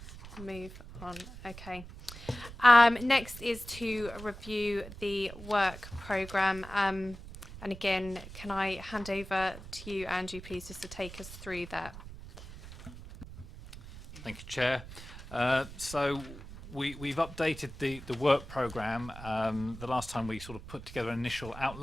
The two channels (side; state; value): right; noise; rumble, 14 dB below the sound